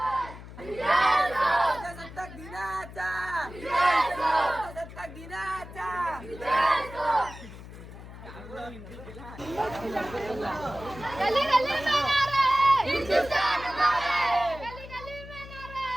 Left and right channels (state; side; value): noise; left; hum, 15 dB below the sound